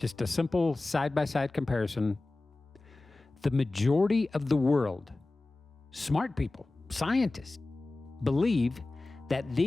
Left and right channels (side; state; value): right; quieter; 3.1 dB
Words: a simple side-by-side comparison. The majority of the world, smart people, scientists, believe that